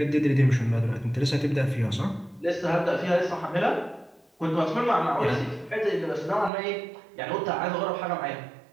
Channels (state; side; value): drops out; left; at 6.5 s